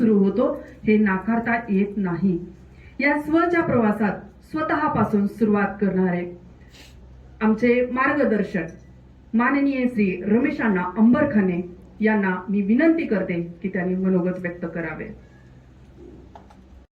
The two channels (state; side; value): identical; both; correlation 1.00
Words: होतो हे नाकारता येत नाही. या स्वच्या प्रवासात स्वतःपासून सुरुवात करणारे आमचे मार्गदर्शक माननीय श्री रमेशांना अंबरखाने यांना मी विनंती करते की त्यांनी मनोगत व्यक्त करावे.